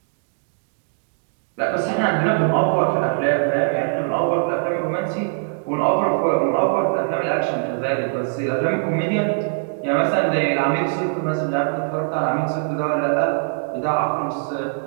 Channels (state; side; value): silent; left; digital silence